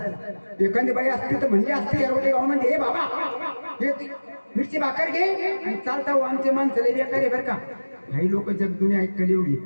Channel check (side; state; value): both; inverted; correlation -1.00